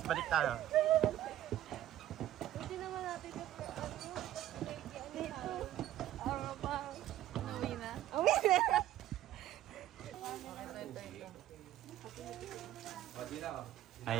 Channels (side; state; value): left; quieter; 13.1 dB